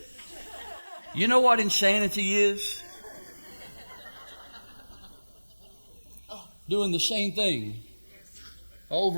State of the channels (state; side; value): inverted; both; correlation -1.00